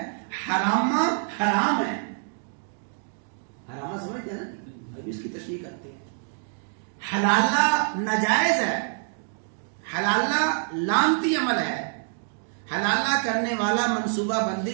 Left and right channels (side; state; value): left; silent; 61 dB below the other